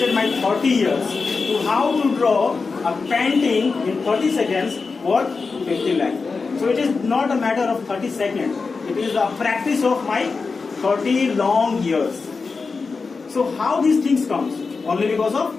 my 30 years to how to draw a painting in 30 seconds worth 50 lakh. So it is not a matter of 30 seconds. It is a practice of my 30 long years. So how these things comes? Only because of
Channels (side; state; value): right; quieter; 4.5 dB